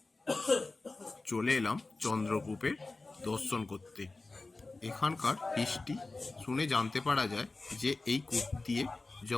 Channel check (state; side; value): quieter; right; 3.4 dB